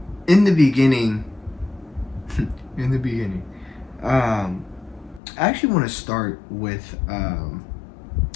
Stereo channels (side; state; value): right; drops out; at 5.2 s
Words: in the beginning, I actually want to start with